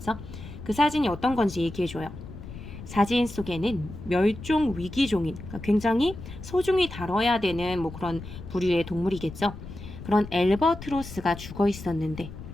그 사진이 어떤 건지 얘기해줘요. 사진 속에는 멸종 위기종인, 그러니까 굉장히 소중히 다뤄야 되는 뭐 그런 부류의 동물이겠죠. 그런 엘버트로스가 죽어 있었는데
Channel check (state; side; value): noise; left; rumble, 12 dB below the sound